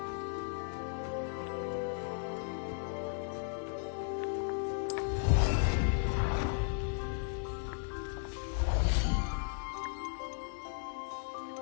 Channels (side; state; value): right; silent; digital silence